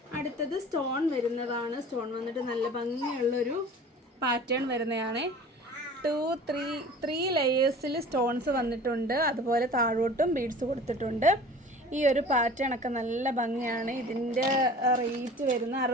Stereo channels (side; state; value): both; normal; correlation 0.43